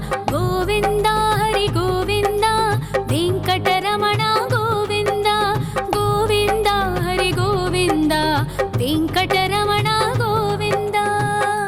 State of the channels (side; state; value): both; identical; correlation 1.00